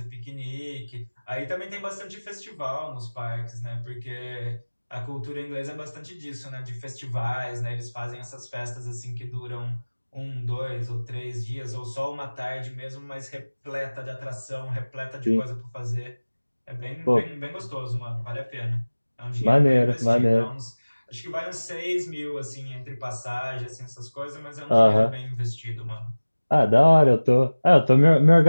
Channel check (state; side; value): inverted; both; correlation -1.00